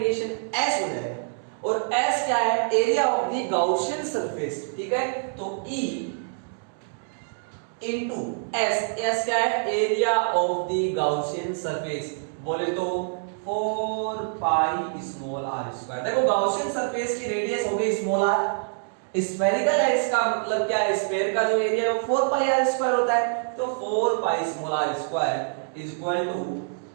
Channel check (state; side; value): silent; left; digital silence